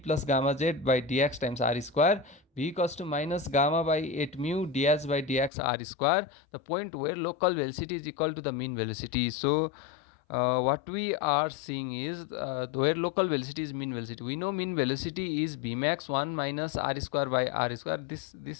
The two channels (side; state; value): right; drops out; at 5.5 s